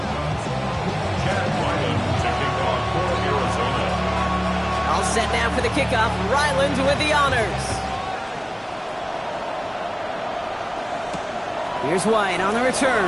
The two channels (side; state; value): both; identical; correlation 1.00